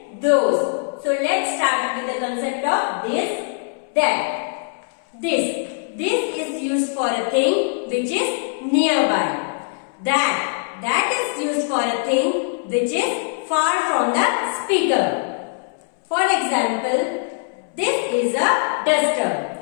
those. So let's start with the concept of this, that. This is used for a thing which is nearby. That is used for a thing which is far from the speaker. For example, this is a duster.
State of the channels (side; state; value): right; silent; 64 dB below the other